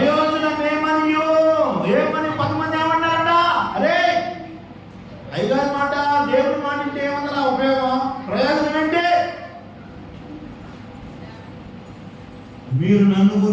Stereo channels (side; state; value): both; identical; correlation 1.00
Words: ఏమనియో. ఏమని 10 మంది ఏమన్నారంట, అరే అయ్యగారి మాట దేవుడి మాట అంటే ఏమన్నా ఉపయోగం, ప్రయోజనం ఏంటి? మీరు నన్ను